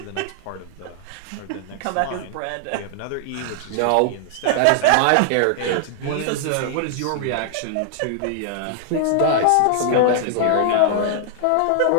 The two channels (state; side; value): different; both; correlation -0.01